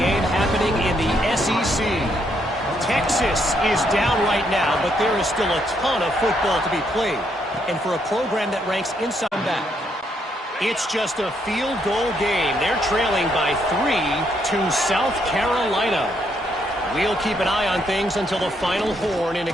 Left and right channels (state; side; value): normal; both; correlation 0.74